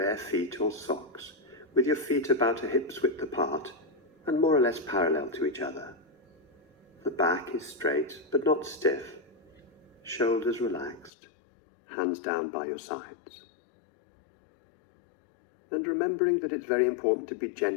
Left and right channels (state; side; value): drops out; right; at 11.1 s